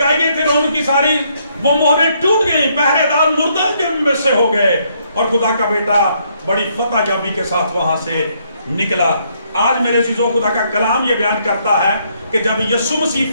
گئی تھی ان کی ساری وہ مہریں ٹوٹ گئی, پہرے دار مردہ کے میں سے ہو گئے, اور خدا کا بیٹا بڑی فتح یابی کے ساتھ وہاں سے نکلا. آج میرے عزیزوں, خدا کا کلام یہ بیان کرتا ہے کہ جب یسوع مسیح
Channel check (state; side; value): inverted; both; correlation -0.71